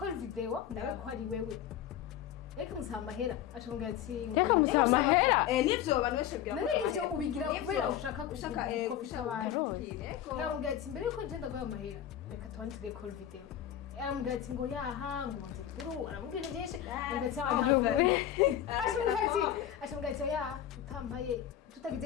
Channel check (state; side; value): quieter; right; 11.0 dB